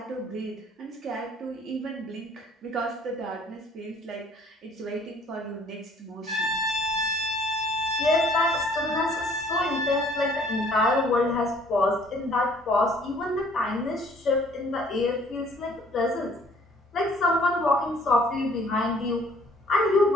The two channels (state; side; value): normal; both; correlation 0.58